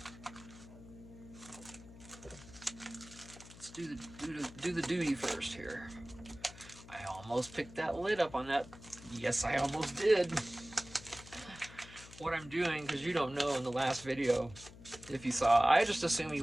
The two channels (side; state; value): left; noise; hum, 18 dB below the sound